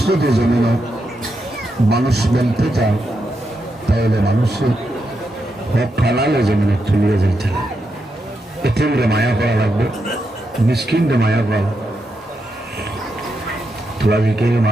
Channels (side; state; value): both; normal; correlation 0.84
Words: যদি জমিন মানুষ বলতে চায়, তাহলে মানুষের হক ফেলালে জমিনে চলিয়ে যাইতে এতে মায়া করা লাগবে, মিসকিনকে মায়া করা তোলাকে